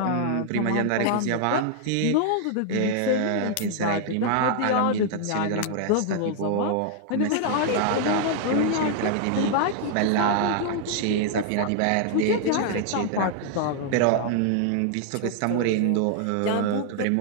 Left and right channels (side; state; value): both; different; correlation 0.00